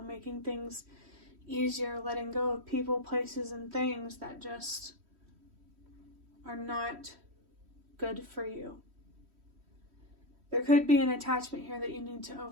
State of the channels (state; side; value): late; left; 3.1 ms